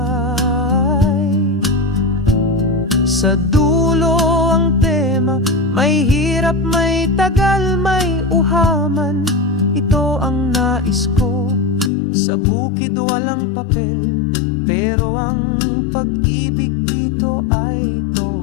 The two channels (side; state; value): right; drops out; at 11.9 s